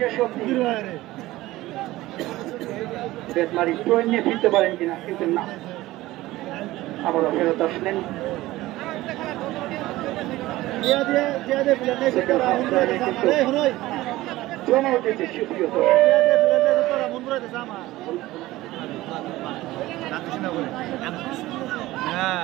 অব্দি বেতমারি পয়েন্ট নিয়ে ফিরতে পারেন কিনা, কিন্তু না, আবারও ফেরত আসলেন। জমা উঠেছে সুপ্রিয়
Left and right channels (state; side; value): quieter; left; 17.4 dB